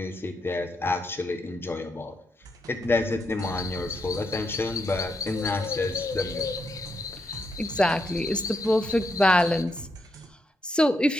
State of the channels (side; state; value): both; normal; correlation 0.80